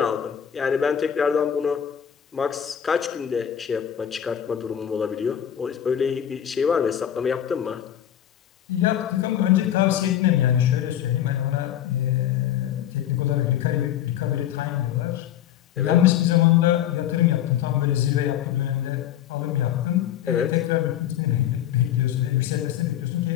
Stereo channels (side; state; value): right; quieter; 10.5 dB